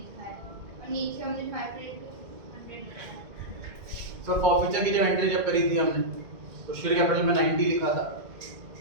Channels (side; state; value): left; late; 2.0 ms